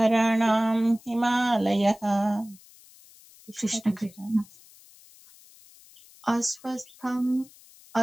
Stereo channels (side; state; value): left; noise; hiss, 25 dB below the sound